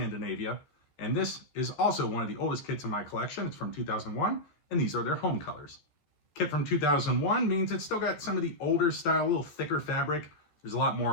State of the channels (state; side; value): late; right; 14 ms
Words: And this is also one of the oldest kits in my collection. It's from 2001, and these are their home colors. Kit from 2001 means it's still got some of the older style, a little thicker fabric. There's a lot